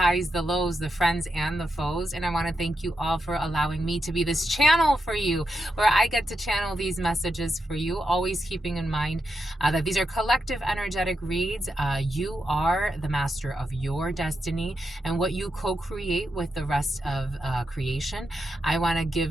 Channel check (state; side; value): normal; both; correlation 0.85